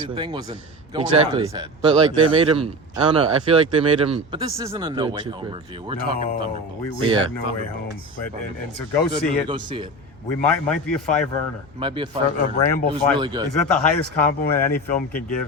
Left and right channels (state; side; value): normal; both; correlation 0.27